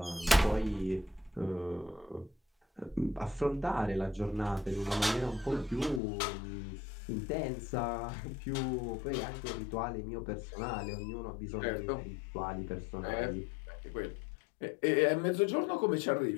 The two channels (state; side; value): drops out; right; at 6.0 s